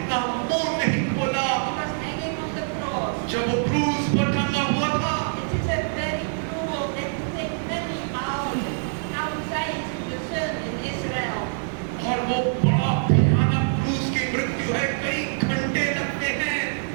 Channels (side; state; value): left; silent; digital silence